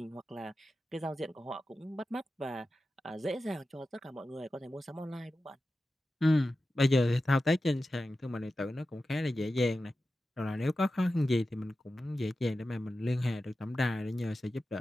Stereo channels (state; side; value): normal; both; correlation 0.93